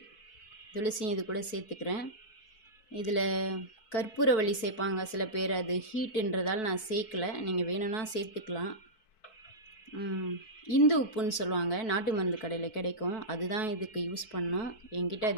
இது கூட சேர்த்துக்கிறேன். இதில் கற்பூரவள்ளி சேர்ப்பாங்க சில பேர். அது ஹீட்டுன்றதால் நான் சேர்க்கலை. நீங்கள் வேணும்னா சேர்த்துக்கலாம். இந்து உப்புன்னு சொல்லுவாங்க, நாட்டு மருந்து கடையில் கிடைக்கும். அதுதான் இதுக்கு யூஸ் பண்ணோம். என்கிட்ட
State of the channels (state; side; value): late; right; 4.6 ms